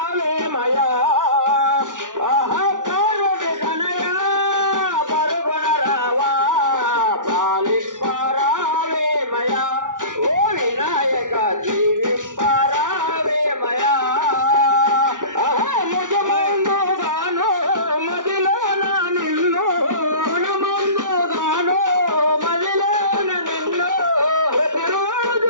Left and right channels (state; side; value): late; left; 0.88 ms